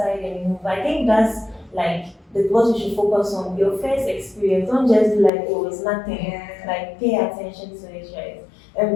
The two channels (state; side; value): drops out; right; at 5.3 s